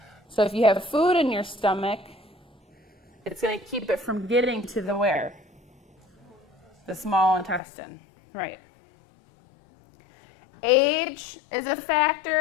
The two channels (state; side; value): drops out; right; at 7.6 s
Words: So if you have food in your stomach, it's going to keep it from getting to the where? The small intestine. Right. Age is a